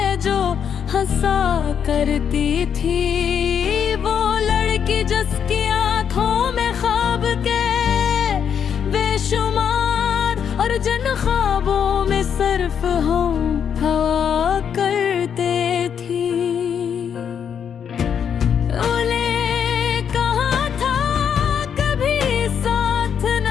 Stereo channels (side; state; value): right; quieter; 7.9 dB